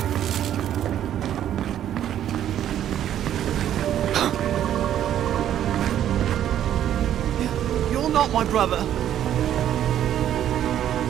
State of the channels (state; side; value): quieter; left; 10.9 dB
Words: You're not my brother.